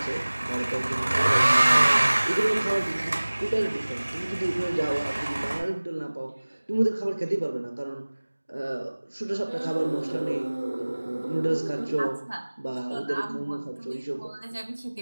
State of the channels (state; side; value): inverted; both; correlation -1.00